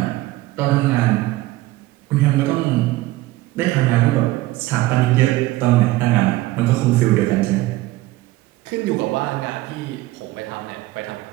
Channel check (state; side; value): quieter; left; 18.0 dB